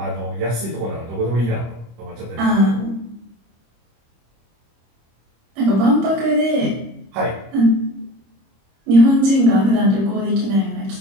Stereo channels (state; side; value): late; left; 25 ms